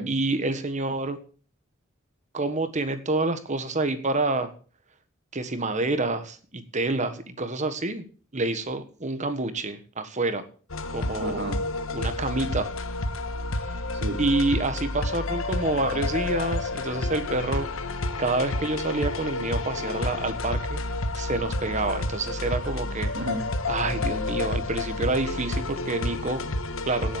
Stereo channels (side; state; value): both; normal; correlation 0.24